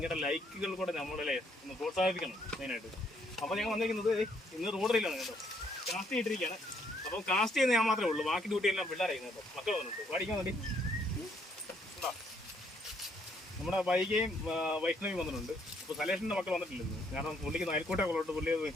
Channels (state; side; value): normal; both; correlation 0.70